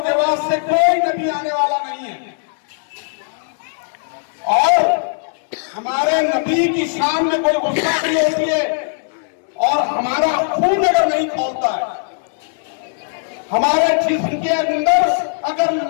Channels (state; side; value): silent; right; 66 dB below the other